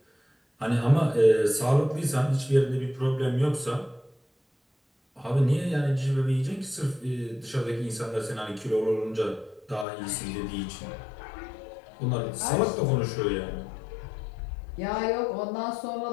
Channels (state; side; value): drops out; right; at 9.9 s